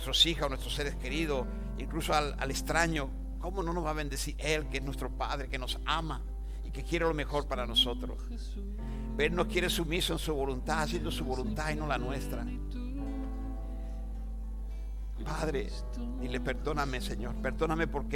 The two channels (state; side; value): identical; both; correlation 1.00